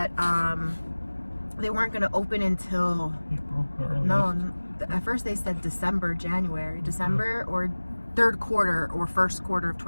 they weren't going to open until April. At first they said December or third quarter or first quarter of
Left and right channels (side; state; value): both; inverted; correlation -1.00